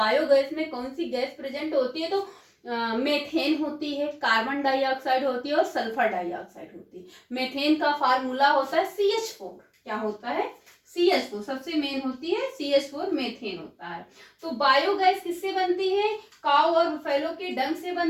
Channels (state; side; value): identical; both; correlation 1.00